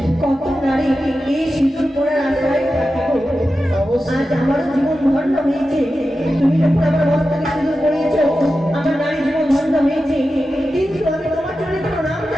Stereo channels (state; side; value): normal; both; correlation 0.92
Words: কত নারী এই সিঁদুর পরার আশায় থাকে গো। আজ আমারও জীবন ধন্য হয়েছে। তুমি যখন আমার মস্তকে সিঁদুর পরিয়েছ আমার নারী জীবন ধন্য হয়েছে, কিন্তু আমি তোমার জন্য কোনো নাম